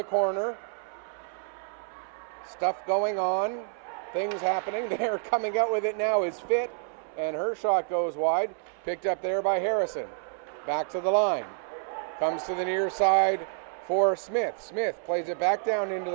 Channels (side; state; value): left; silent; 59 dB below the other